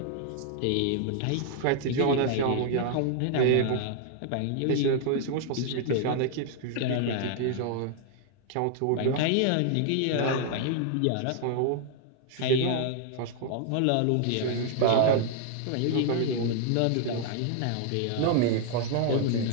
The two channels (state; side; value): different; both; correlation 0.00